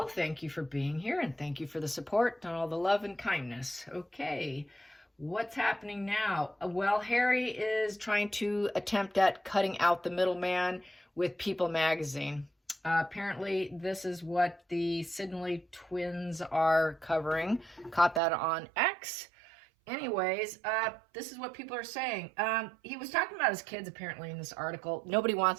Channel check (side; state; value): left; drops out; at 18.2 s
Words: Thank you for being here and thank you for the support and all the love and kindness. Okay, what's happening now? Well, Harry is trying to attempt at cutting out the middleman with People magazine. Apparently, this is what the Sidney twins are covering. Caught that on X. Anyways, this is what people are saying. He was talking about his kids apparently in this article. Nobody